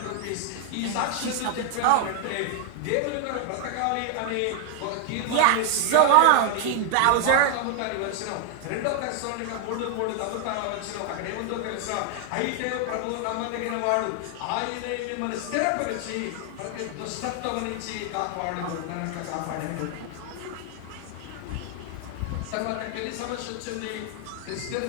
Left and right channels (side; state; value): both; different; correlation 0.00